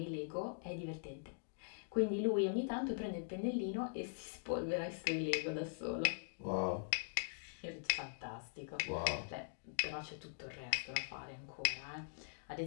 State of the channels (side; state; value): right; silent; digital silence